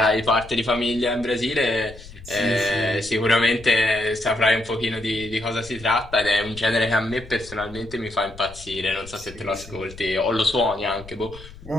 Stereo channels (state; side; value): noise; left; rumble, 17 dB below the sound